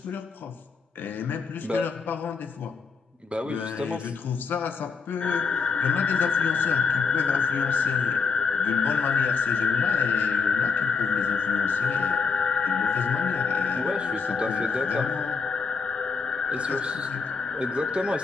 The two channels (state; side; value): quieter; right; 5.2 dB